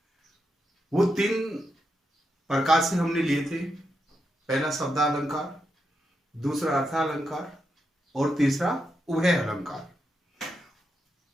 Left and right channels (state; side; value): normal; both; correlation 0.84